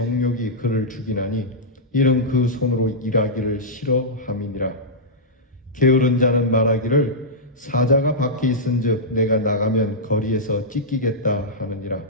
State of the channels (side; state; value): both; normal; correlation -0.11